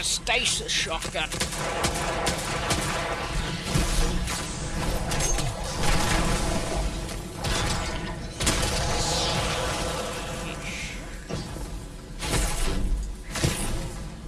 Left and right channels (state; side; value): identical; both; correlation 1.00